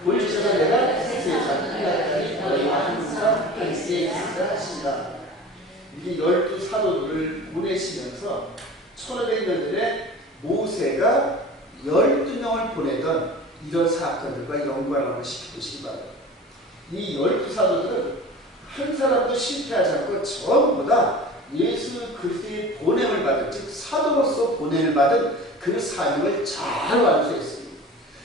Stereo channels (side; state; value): both; normal; correlation 0.38